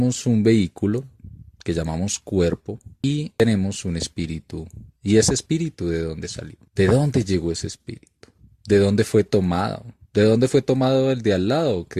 un vehículo que llamamos cuerpo y tenemos un espíritu. ¿Y ese espíritu de dónde salió? ¿De dónde llegó ese espíritu? ¿De dónde fue tomado? ¿De dónde fue tomado el de al lado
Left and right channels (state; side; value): identical; both; correlation 1.00